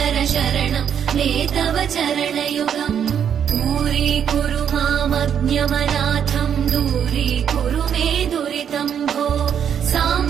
शरणं मे तव चरणयुगम् दूरीकुरु मामज्ञमनाथं दूरीकुरु मे दुरितं भो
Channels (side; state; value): left; quieter; 8.4 dB